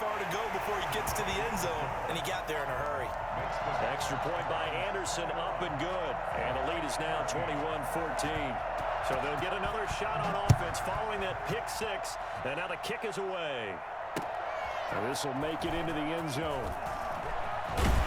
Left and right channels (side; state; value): both; identical; correlation 1.00